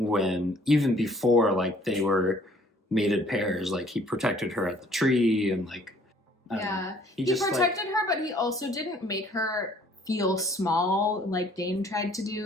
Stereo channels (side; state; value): both; normal; correlation 0.58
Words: even before like they were mated pairs, like he protected her at the tree and like he protected her, but he also didn't make her feel small like Dane tried to